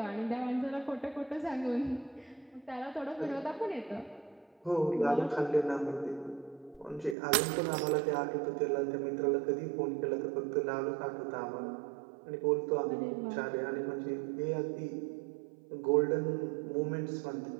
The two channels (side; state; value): left; drops out; at 7.2 s